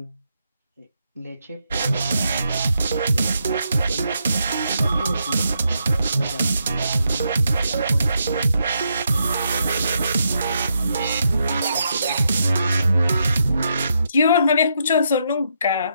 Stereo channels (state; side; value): inverted; both; correlation -0.79